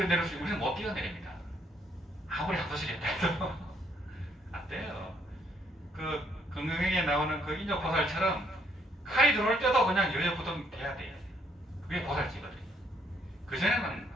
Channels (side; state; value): both; normal; correlation 0.70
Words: 수, 우리는 못 뛰어내립니다. 아무리 학도시겠다 해도 안 돼요. 그 건강에 나오는 그 인조보살처럼 칼이 들어올 때도 그냥 여여부동 돼야 돼요. 그게 보살지거든요. 그전에는